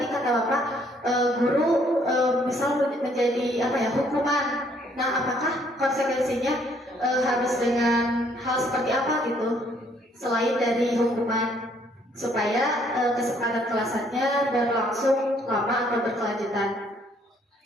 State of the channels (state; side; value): normal; both; correlation 0.65